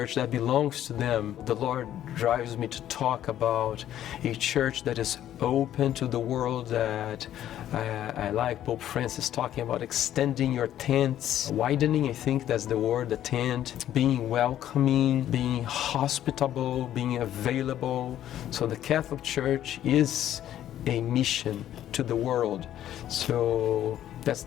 that belongs to them. The Lord drives me to talk about a church that is open to the world, that I like Pope Francis talking about extending your tents, widening, I think that's the word, the tent, being welcoming, being hospitable, being available. So the Catholic Church is a mission to the world. So that's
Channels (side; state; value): right; quieter; 11.7 dB